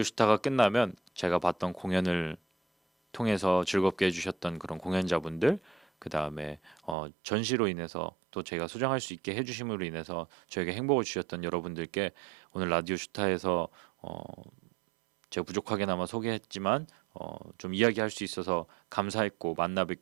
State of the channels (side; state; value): left; drops out; at 7.0 s